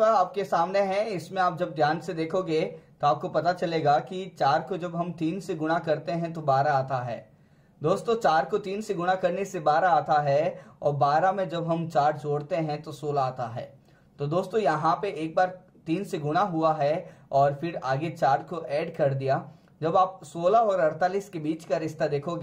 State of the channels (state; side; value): identical; both; correlation 1.00